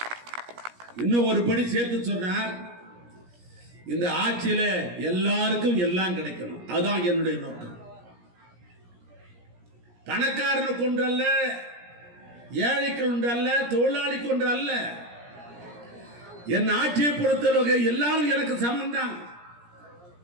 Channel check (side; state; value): left; late; 17 ms